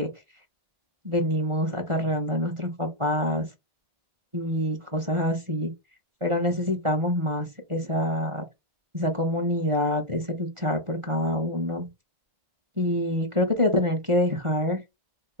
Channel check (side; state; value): left; late; 1.4 ms